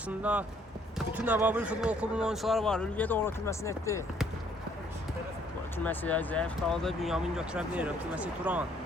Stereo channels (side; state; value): both; normal; correlation 0.64